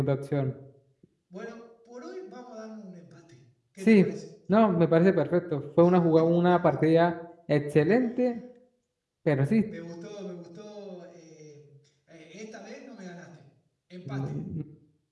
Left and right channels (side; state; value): both; identical; correlation 1.00